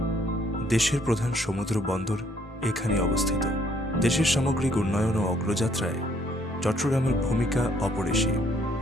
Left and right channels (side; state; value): both; normal; correlation 0.65